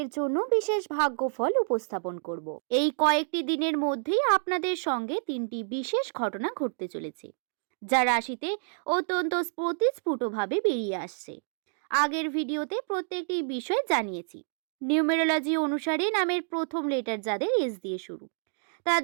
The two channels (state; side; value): silent; left; digital silence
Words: জন্য বিশেষ ভাগ্যফল উপস্থাপন করব। এই কয়েকটি দিনের মধ্যেই আপনাদের সঙ্গে 3টি বিশেষ ঘটনা ঘটতে চলেছে, যা রাশিতে অত্যন্ত স্ফুটভাবে বেরিয়ে আসছে। আগের ভিডিওতে প্রত্যেকটি বিষয় জানিয়েছি। নিউমেরোলজি অনুসারে নামের প্রথম লেটার যাদের এস দিয়ে শুরু,